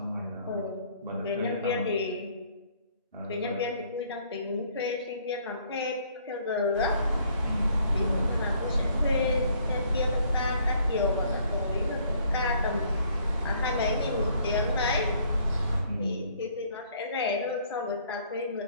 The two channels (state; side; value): inverted; both; correlation -0.62